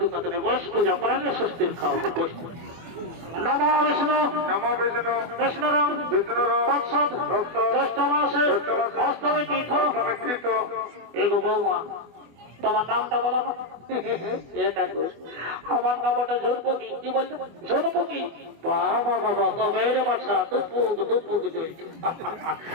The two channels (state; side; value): late; left; 24 ms